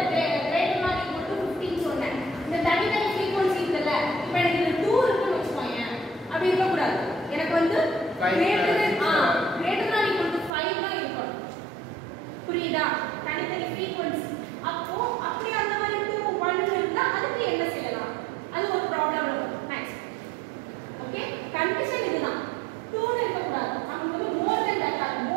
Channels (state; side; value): drops out; left; at 10.5 s